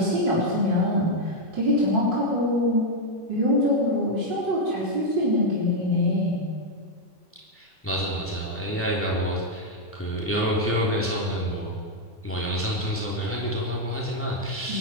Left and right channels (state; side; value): normal; both; correlation 0.00